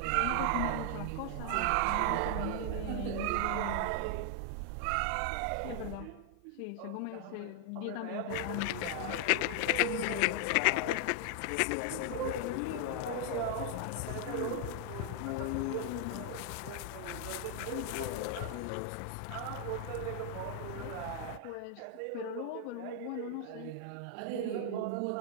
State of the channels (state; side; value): different; both; correlation 0.00